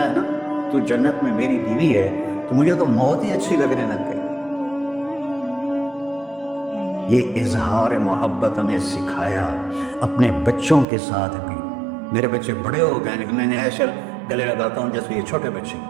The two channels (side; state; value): left; drops out; at 10.9 s